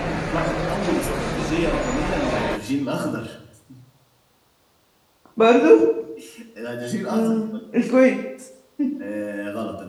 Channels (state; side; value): identical; both; correlation 1.00